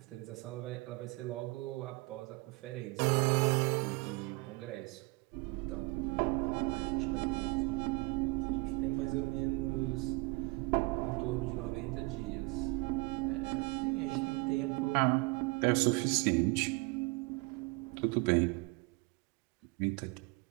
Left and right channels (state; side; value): quieter; left; 26.0 dB